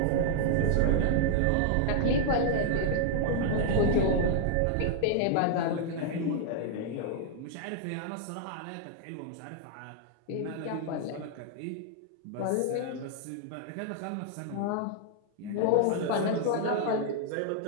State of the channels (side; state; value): both; different; correlation 0.00